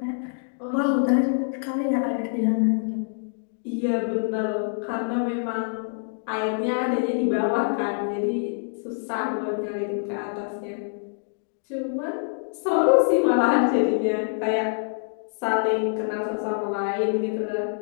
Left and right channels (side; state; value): right; silent; digital silence